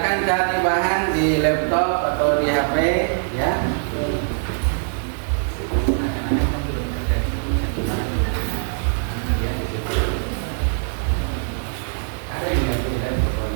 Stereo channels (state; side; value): silent; left; 63 dB below the other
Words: cari bahan di laptop atau di HP, ya.